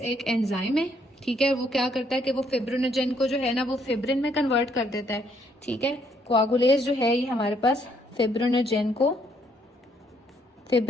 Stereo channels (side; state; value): both; normal; correlation 0.70